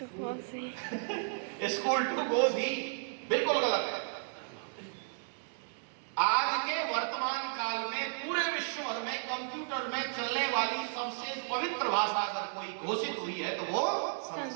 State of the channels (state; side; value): silent; left; digital silence